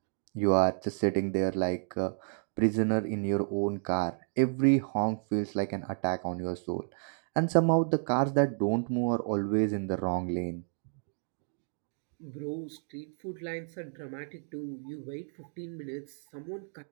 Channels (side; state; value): left; silent; digital silence